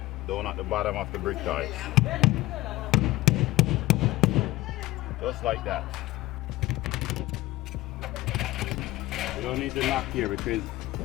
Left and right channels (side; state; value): right; quieter; 18.1 dB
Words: down at the bottom of the brick ties. Just like that. You don't need to knock here because